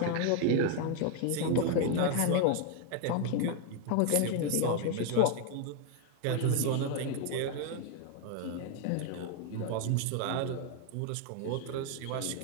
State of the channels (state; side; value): different; both; correlation 0.01